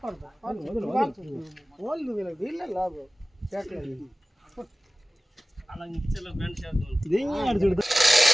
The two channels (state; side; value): normal; both; correlation 0.96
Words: వాళ్ళు వీళ్ళే లాభం